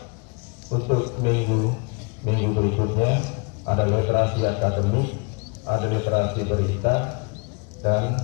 untuk minggu berikutnya ada literasi akademik, ada literasi berita, dan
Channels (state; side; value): quieter; right; 32.7 dB